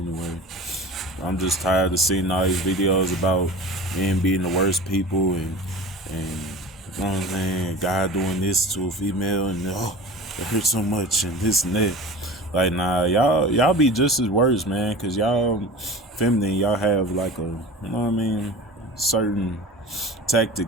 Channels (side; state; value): both; normal; correlation 0.35